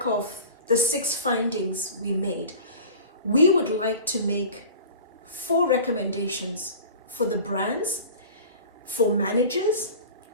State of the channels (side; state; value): both; inverted; correlation -0.39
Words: of the 6 findings we made, we would like to make 4 recommendations for the brands, for managers,